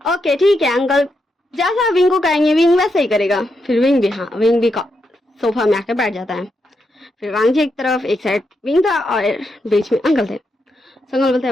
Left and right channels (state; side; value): normal; both; correlation 0.83